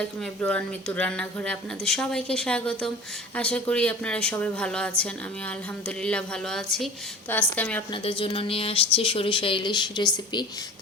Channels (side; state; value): both; normal; correlation 0.40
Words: এভরিওয়ান, মিতুর রান্নাঘরে আপনাদের সবাইকে স্বাগতম। আশা করি আপনারা সবাই ভালো আছেন। আমি আলহামদুলিল্লাহ ভালো আছি। তো আজকে আমি আপনাদের জন্য নিয়ে আসছি সরিষা ইলিশ রেসিপি।